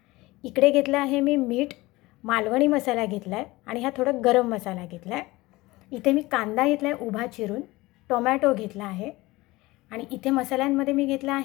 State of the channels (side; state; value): right; quieter; 20.4 dB